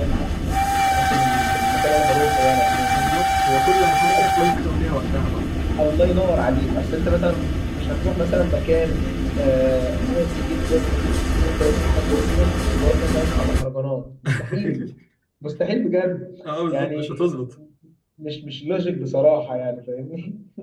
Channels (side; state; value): both; identical; correlation 1.00